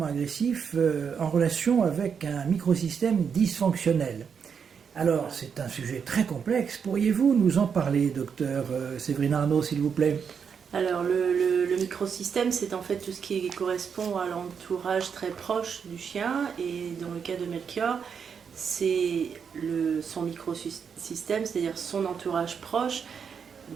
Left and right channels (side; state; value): left; quieter; 6.7 dB